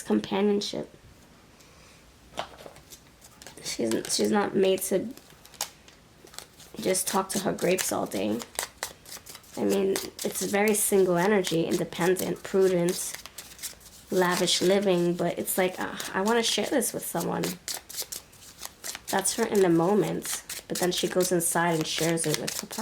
companionship. She's not made to just talk to her grapes all day. I mean, it's very single energy, independent, prudent, lavish living, but it's like, I want to share this with someone. That's her in the moment, but then she goes inside and shares it with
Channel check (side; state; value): both; identical; correlation 1.00